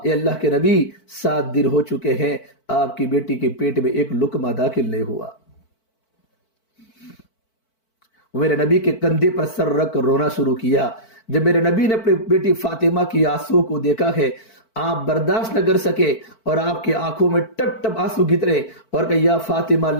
اے اللہ کے نبی، 7 دن ہو چکے ہیں آپ کی بیٹی کے پیٹ میں ایک لقمہ داخل نہیں ہوا۔ میرے نبی کے کندھے پر سر رکھ کر رونا شروع کیا۔ جب میرے نبی نے اپنی بیٹی فاطمہ کی آنسو کو دیکھا ہے، آپ برداشت نہ کر سکے اور آپ کی آنکھوں میں ٹپ ٹپ آنسو گرے اور کہا یا فاطمہ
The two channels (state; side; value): late; right; 4.5 ms